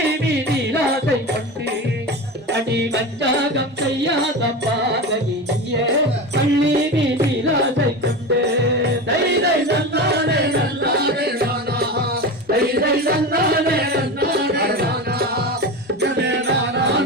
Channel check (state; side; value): normal; both; correlation 0.25